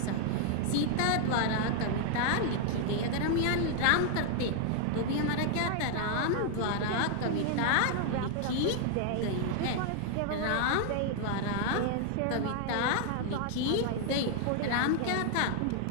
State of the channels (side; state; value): both; different; correlation 0.00